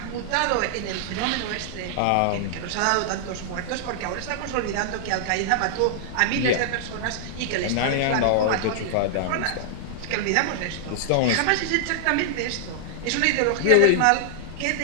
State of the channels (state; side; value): different; both; correlation -0.01